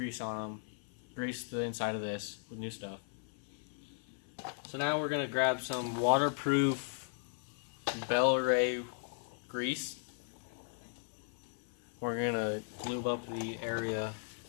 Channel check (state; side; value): silent; right; 53 dB below the other